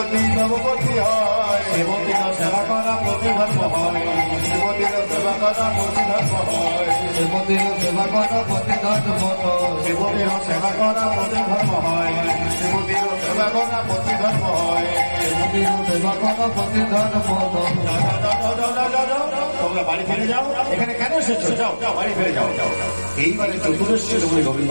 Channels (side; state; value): both; inverted; correlation -1.00